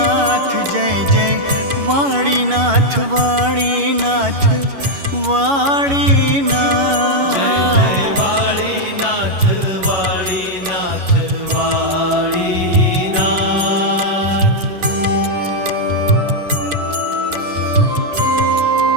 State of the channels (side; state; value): left; late; 11 ms